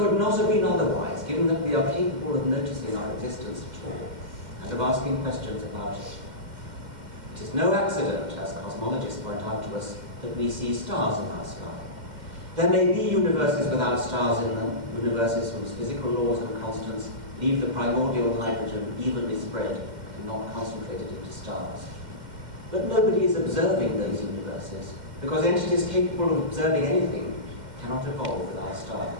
not have been otherwise, given that we are capable of noticing our existence at all, and of asking questions about it. It is no accident, as cosmologists point out to us, that we see stars in our sky. There may be universes without stars in them, universes whose physical laws and constants leave the primordial hydrogen evenly spread and not concentrated into stars. But nobody is observing those universes, because entities capable of observing anything cannot evolve without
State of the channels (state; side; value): late; left; 2.1 ms